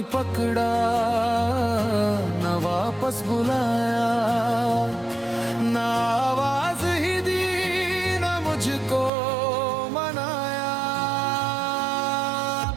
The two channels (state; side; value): drops out; left; at 9.1 s